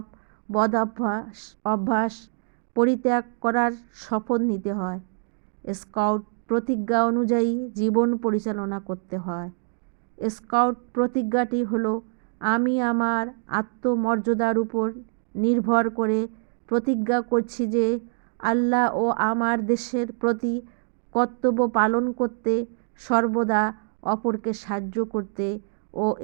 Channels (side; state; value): left; silent; 62 dB below the other